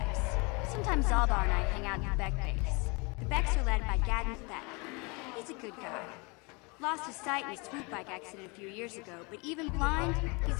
Sometimes Zalbar and I hang out at the Beck base. The Becks are led by Gadden Thek. He's a good guy. Lost his sight in a swoop bike accident a few years ago, but even blind, he's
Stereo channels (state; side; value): quieter; right; 29.3 dB